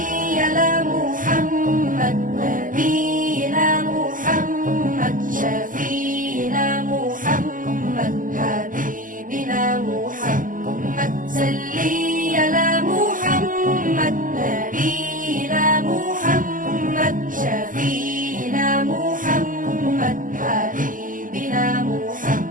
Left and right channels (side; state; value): left; late; 0.39 ms